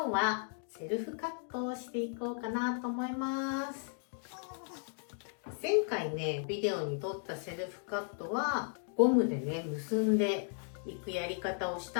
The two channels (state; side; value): silent; right; 54 dB below the other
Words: 日はセルフカットをしていこうかなと思います。前回ね、ビデオに撮ったセルフカットはゴムでね、結んでいくやり方をし